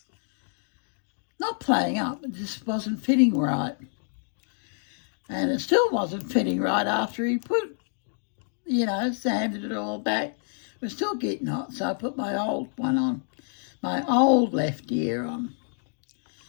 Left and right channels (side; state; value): right; silent; digital silence